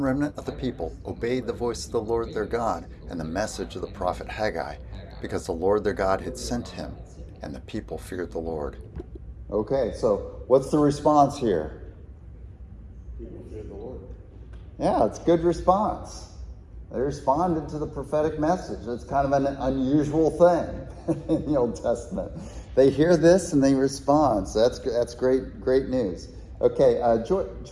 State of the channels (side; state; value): both; identical; correlation 1.00